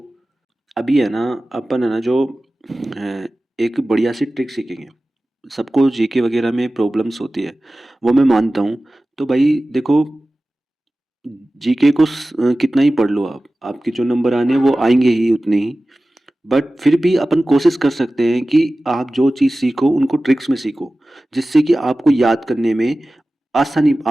अभी है ना, अपन है ना जो अ, एक बढ़िया सी ट्रिक सीखेंगे। सबको जीके वगैरह में प्रॉब्लम्स होती है, वो मैं मानता हूँ। तो भाई देखो, जीके को कितना ही पढ़ लो आप, आपके जो नंबर आने हैं वो आएंगे ही उतने ही। बट फिर भी अपन कोशिश कर सकते हैं कि आप जो चीज़ सीखो उनको ट्रिक्स में सीखो, जिससे कि आपको याद करने में आसानी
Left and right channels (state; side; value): normal; both; correlation 0.96